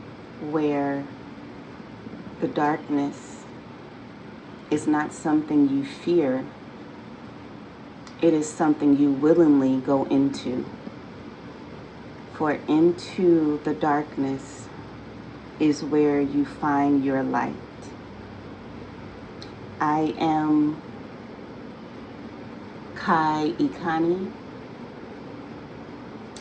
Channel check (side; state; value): both; identical; correlation 1.00